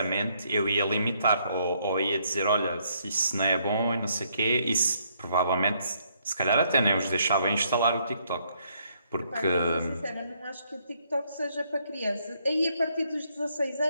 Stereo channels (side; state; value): both; inverted; correlation -0.71